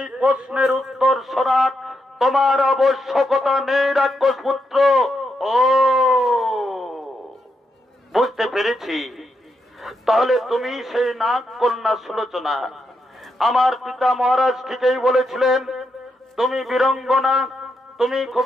তোমার আবশ্যকতা নেই রাক্ষস পুত্র। ও বুঝতে পেরেছি, তাহলে তুমি সেই নাগ কন্যা সুলোচনা। আমার পিতা মহারাজ ঠিকই বলেছিলেন, তুমি বীরঙ্গনা, তুমি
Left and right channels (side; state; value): both; normal; correlation 0.82